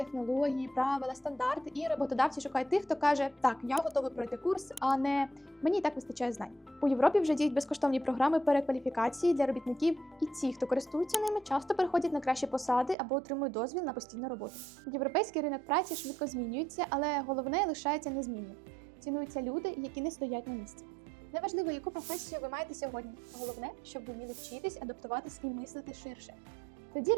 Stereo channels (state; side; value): drops out; left; at 13.0 s